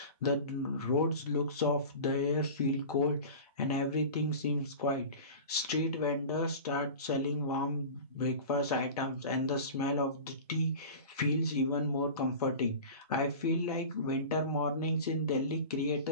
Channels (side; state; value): both; inverted; correlation -0.34